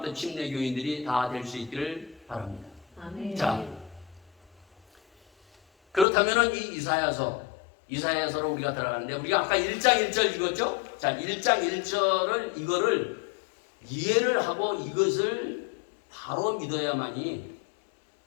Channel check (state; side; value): drops out; right; at 6.1 s